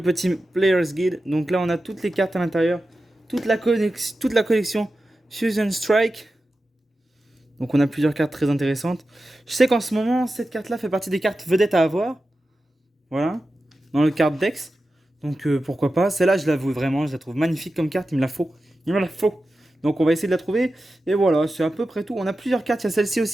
Player's Guide. Donc là, on a toutes les cartes à l'intérieur. Toute la collection Fusion Strike. Donc on a plusieurs cartes très intéressantes. Je sais qu'en ce moment, cette carte-là fait partie des cartes vedettes à avoir. Voilà. Dans le card Dex. Donc pourquoi pas. Celle-là, je l'avoue vraiment, je la trouve magnifique comme carte. Il me la faut. Il me la faut. Donc on va essayer de la trouver. Et voilà, c'est à peu près tout. On a plusieurs cartes. Il y a celle-ci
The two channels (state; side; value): normal; both; correlation 0.93